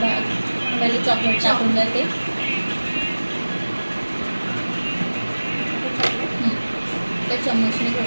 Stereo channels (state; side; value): inverted; both; correlation -1.00